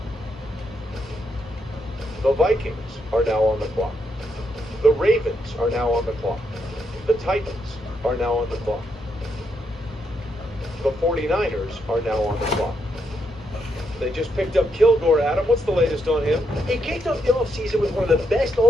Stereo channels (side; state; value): both; normal; correlation 0.79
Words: The Vikings are now on the clock. The Ravens are now on the clock. The Titans are now on the clock. The 49ers are now on the clock. They just picked up Kilgore, Adam. What's the latest on him? He kicked off the offseason with one of the best